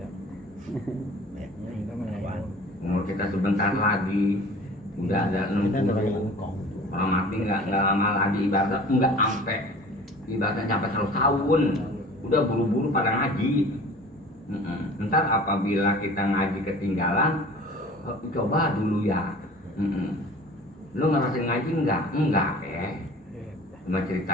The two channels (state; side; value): normal; both; correlation 0.44